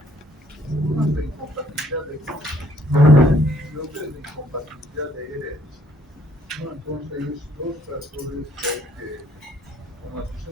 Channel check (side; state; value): both; normal; correlation 0.65